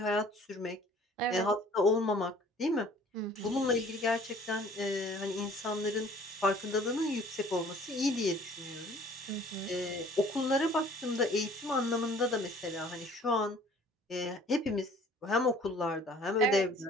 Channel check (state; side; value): normal; both; correlation 0.52